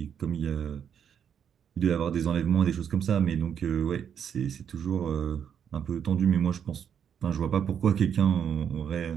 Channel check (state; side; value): quieter; left; 8.2 dB